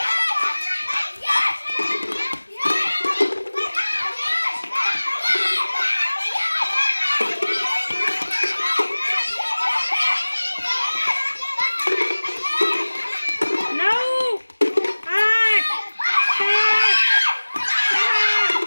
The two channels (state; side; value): inverted; both; correlation -1.00